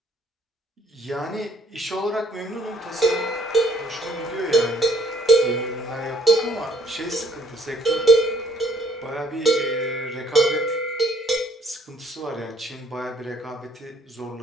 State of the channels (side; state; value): both; normal; correlation 0.62